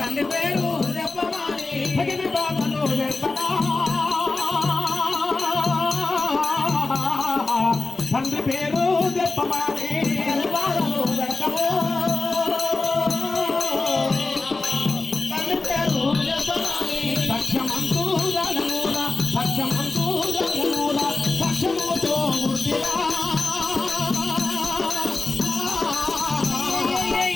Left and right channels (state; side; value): quieter; right; 3.5 dB